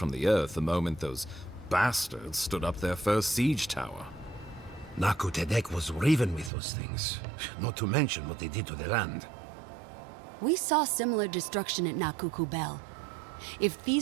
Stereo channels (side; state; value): left; drops out; at 6.5 s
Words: the earth the moment those bastards stood up their first siege tower. Nakutadek was riven with those things, not to mention what they did to the land. We saw similar destruction at Nakuku Bell. If